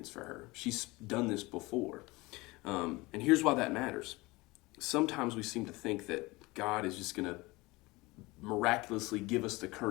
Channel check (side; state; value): right; quieter; 22.5 dB